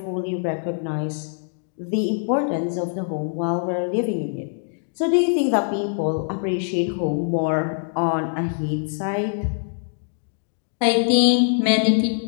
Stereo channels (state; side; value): silent; right; digital silence